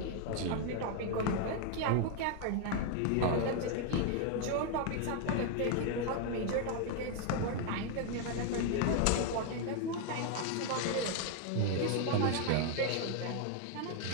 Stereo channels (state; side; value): different; both; correlation 0.01